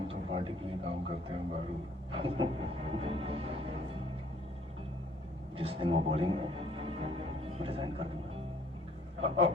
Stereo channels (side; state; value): both; normal; correlation 0.60